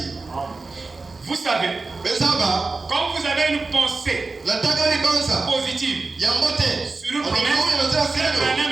Vous savez, quand vous avez une pensée positive sur une promesse, c'est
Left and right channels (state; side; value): quieter; left; 3.7 dB